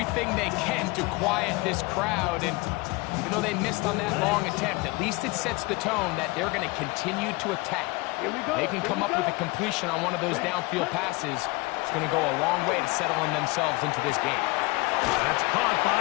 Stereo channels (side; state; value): right; quieter; 24.3 dB